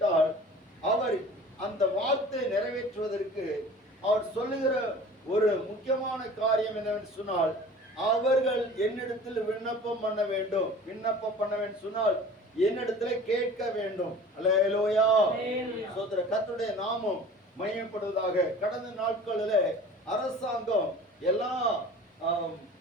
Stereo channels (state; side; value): normal; both; correlation 0.43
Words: அவர் அந்த வார்த்தை நிறைவேற்றுவதற்கு அவர் சொல்லுகிற ஒரு முக்கியமான காரியம் என்னவென்று சொன்னால், அவர்கள் என்னிடத்தில் விண்ணப்பம் பண்ண வேண்டும். விண்ணப்பம் பண்ண வேண்டும் சொன்னால் என்னிடத்துல கேட்க வேண்டும். அல்லேலூயா. சோதர கர்த்தருடைய நாமம் மகிமைப்படுவதாக. கடந்த நாட்களில் அரசாங்கம்